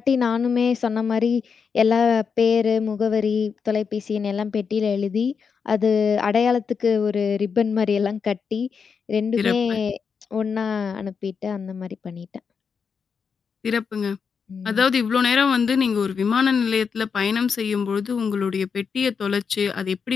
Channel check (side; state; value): right; quieter; 6.0 dB